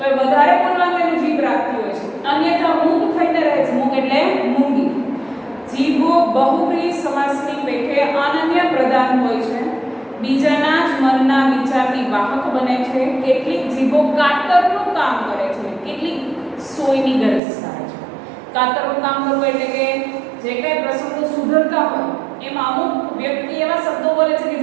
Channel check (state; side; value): drops out; left; at 17.4 s